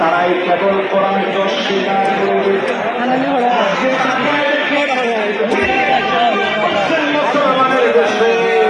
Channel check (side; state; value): both; identical; correlation 1.00